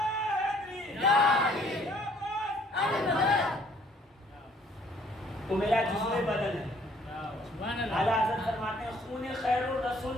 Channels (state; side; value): normal; both; correlation 0.61